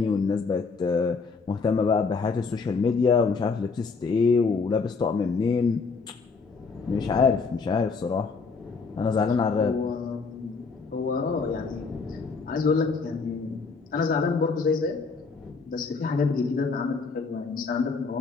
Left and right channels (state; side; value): quieter; right; 4.7 dB